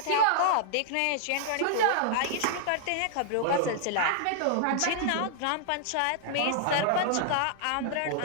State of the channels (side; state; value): both; different; correlation -0.01